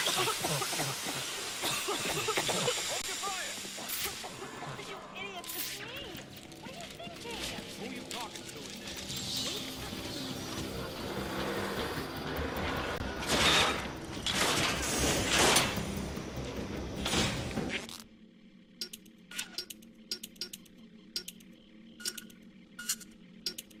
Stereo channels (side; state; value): both; identical; correlation 1.00